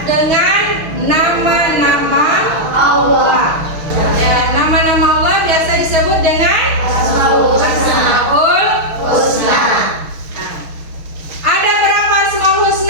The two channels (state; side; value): late; left; 6.3 ms